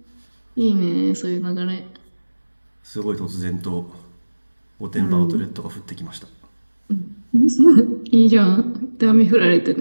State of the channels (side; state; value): both; inverted; correlation -1.00